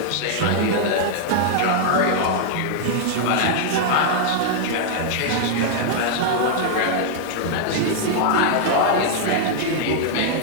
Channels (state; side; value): different; both; correlation -0.01